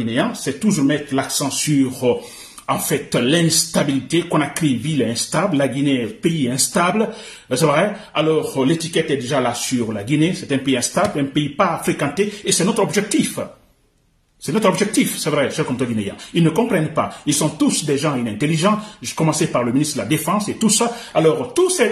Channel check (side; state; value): both; identical; correlation 1.00